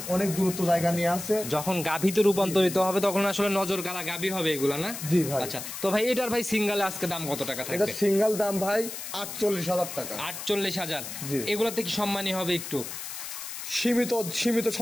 অনেক দূরত্ব জায়গা নিয়ে আছে। যখন গাভীতে রূপান্তরিত হবে তখন আসলে নজর কাড়া গাভী হবে এগুলা, না? জি ভাই। আচ্ছা, তো ভাই এটার ভাই সিঙ্গেলে আজকে দাম কত টাকা থাকবে? এটা সিঙ্গেল দাম ভাই 48,000 টাকা। 48,000। এগুলাতে কি সম্মানী হবে একটু? সীমিত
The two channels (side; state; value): left; noise; hiss, 8 dB below the sound